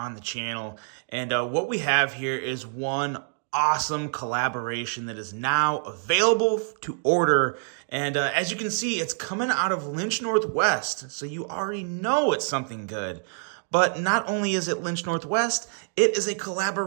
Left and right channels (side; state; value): left; silent; digital silence